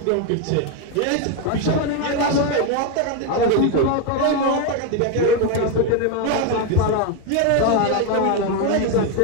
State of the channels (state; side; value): different; both; correlation 0.02